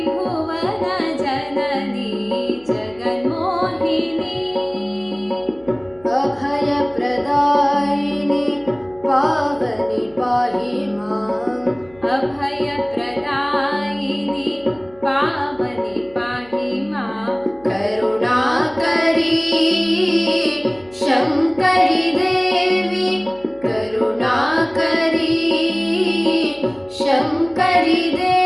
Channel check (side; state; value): left; noise; hum, 27 dB below the sound